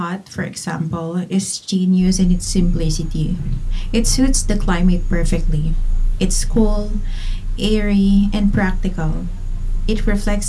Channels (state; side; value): identical; both; correlation 1.00